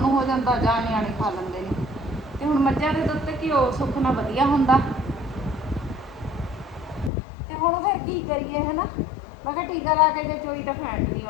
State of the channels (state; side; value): drops out; right; at 7.1 s